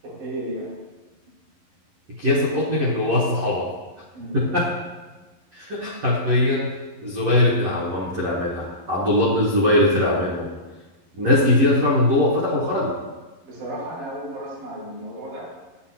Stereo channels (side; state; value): left; late; 11 ms